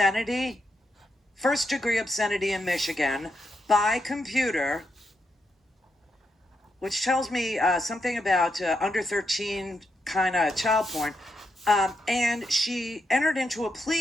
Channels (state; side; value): normal; both; correlation 0.82